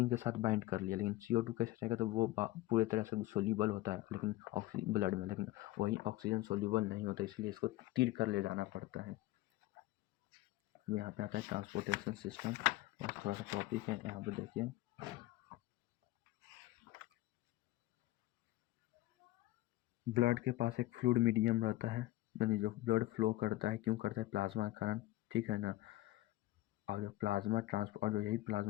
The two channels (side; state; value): right; quieter; 16.8 dB